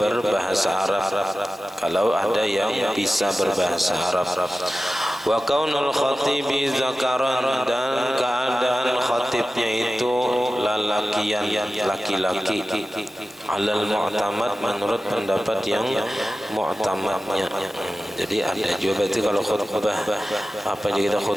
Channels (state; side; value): normal; both; correlation 0.94